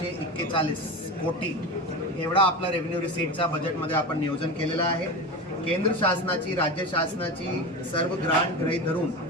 कोटी एवढा आपला रेव्हेन्यू रिसीटचा बजेटमध्ये आपण नियोजन केलेलं आहे. केंद्र शासनाची, राज्य शासनाची सर्व ग्रांट गृहीत धरून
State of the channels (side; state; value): both; normal; correlation 0.25